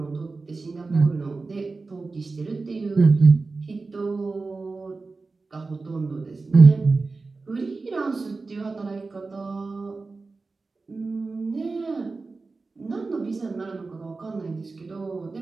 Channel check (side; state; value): left; quieter; 3.9 dB